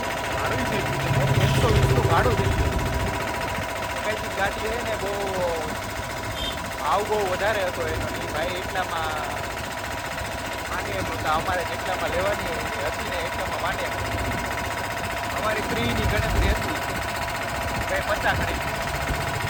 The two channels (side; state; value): both; identical; correlation 1.00